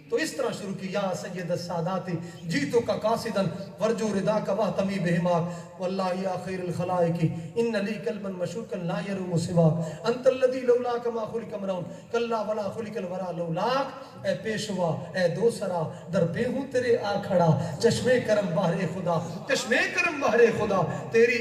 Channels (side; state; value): both; identical; correlation 1.00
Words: تو اس طرح شروع کی, یا سید السادات جیتو کا قاصدا ورجو ردا کا واہتمی بہماک واللہ یا خیر الخلائق ان لی قلبا مشوقا لا یروم سواک انت الذی لولاک ما خلق امرؤ کلا ولا خلق الورا لولاک. اے پیشوا اے دوسرا در پہ ہوں تیرے آ کھڑا, چشمے کرم بہر خدا چشمے کرم بہر خدا. تیری